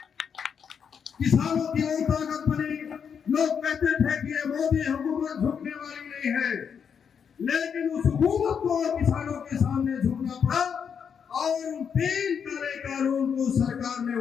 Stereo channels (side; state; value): right; quieter; 7.1 dB